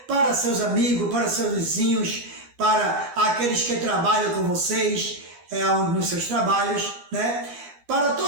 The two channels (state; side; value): late; left; 13 ms